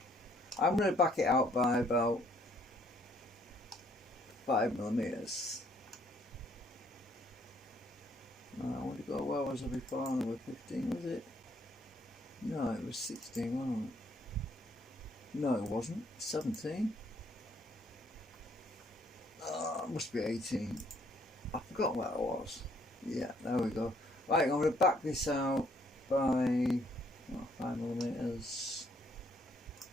I'm going to back it out by about 5mm. I want to go, where was I before? I was 15, was it? No, it was 16, wasn't it? No, it wasn't. 17? It must be 18. I forgot what it was. Yeah, there we go. Right, I'm going to back this out by 5mm.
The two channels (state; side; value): normal; both; correlation 0.66